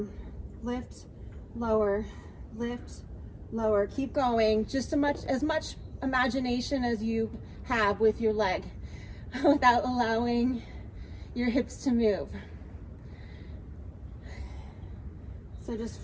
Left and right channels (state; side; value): identical; both; correlation 1.00